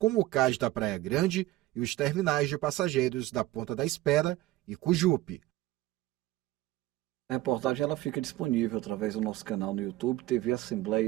o cais da Praia Grande e os terminais de passageiros da Ponta da Espera e Cujupe. A reportagem ela fica disponível através do nosso canal no YouTube, TV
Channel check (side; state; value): left; quieter; 16.6 dB